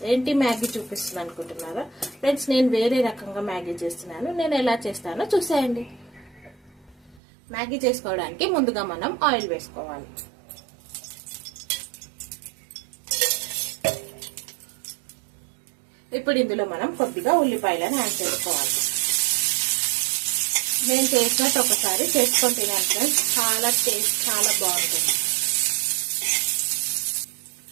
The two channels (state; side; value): drops out; left; at 7.2 s